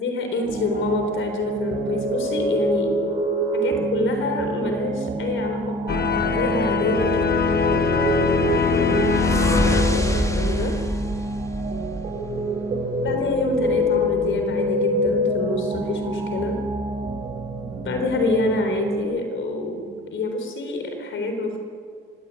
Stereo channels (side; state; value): both; normal; correlation 0.43